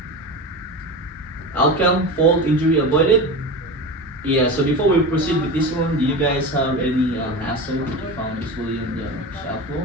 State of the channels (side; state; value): both; normal; correlation 0.26